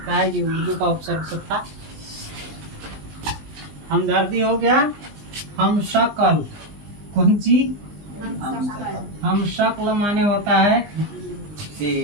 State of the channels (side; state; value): left; late; 20 ms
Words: है, ये उर्दू का उपसर्ग सब था। हमदर्दी हो गया। हम शक्ल। कौन सी? हम शक्ल माने होता है